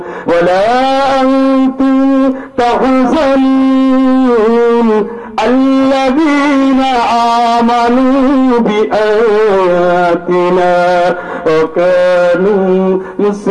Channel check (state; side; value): identical; both; correlation 1.00